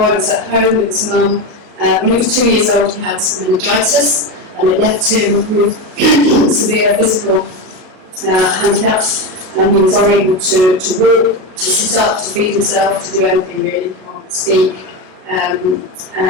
was at home with his mum. When he was 2 years old, he had meningitis, and it left him with severe physical handicaps, and he was unable to walk, to sit up, to feed himself, to do anything really, he can't speak, and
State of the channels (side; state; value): left; late; 38 ms